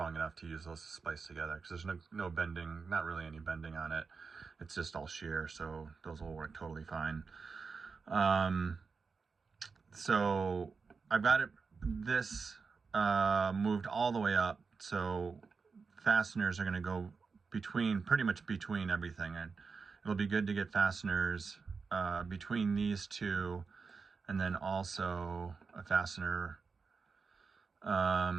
enough to use those to splice together, because there's no bending, not really any bending on it. It's just all shear, so those will work totally fine. So I've got this moved all the way up, so fasteners are going to go pretty much between everything, and it'll be good to get fasteners between these two, and then also a fastener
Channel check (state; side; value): quieter; left; 4.9 dB